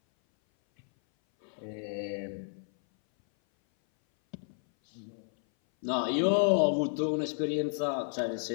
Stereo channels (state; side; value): silent; right; 57 dB below the other